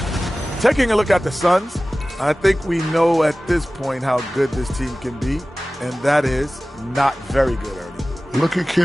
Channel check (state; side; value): normal; both; correlation 0.97